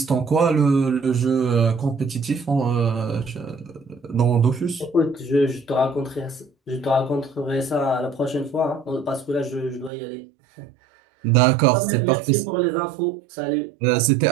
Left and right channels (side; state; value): left; drops out; at 9.9 s